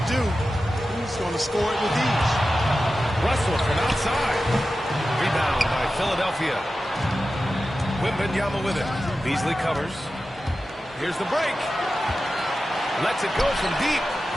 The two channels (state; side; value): normal; both; correlation 0.93